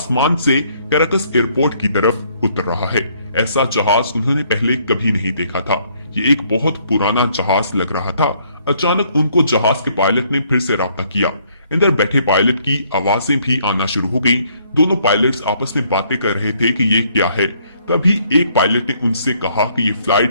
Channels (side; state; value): both; inverted; correlation -0.67